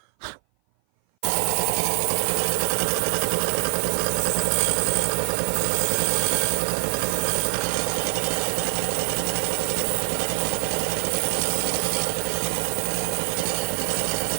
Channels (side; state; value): left; silent; 57 dB below the other